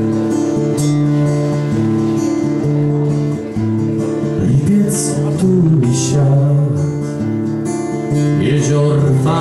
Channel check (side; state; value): both; identical; correlation 1.00